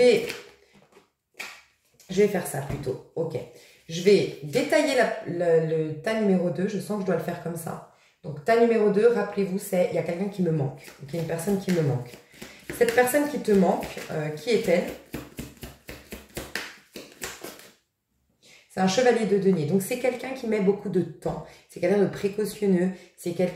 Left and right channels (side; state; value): both; identical; correlation 1.00